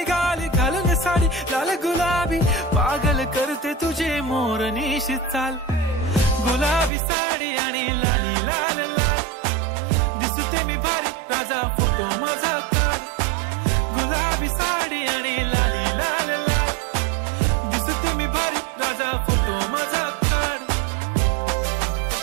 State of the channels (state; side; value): drops out; left; at 6.9 s